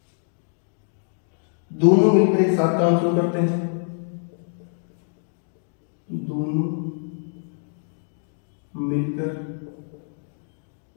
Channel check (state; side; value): silent; right; digital silence